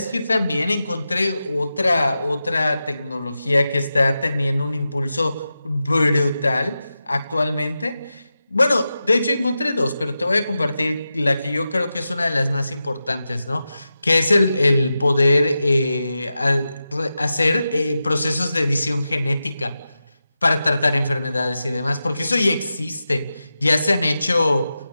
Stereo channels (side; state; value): both; inverted; correlation -0.91